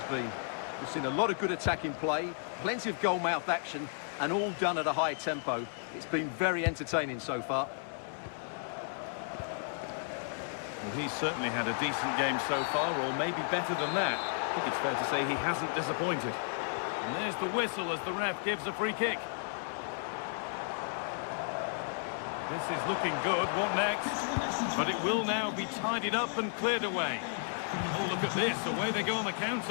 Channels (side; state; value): right; silent; digital silence